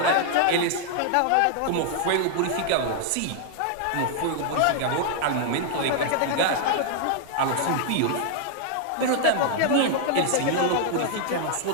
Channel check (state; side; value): different; both; correlation 0.00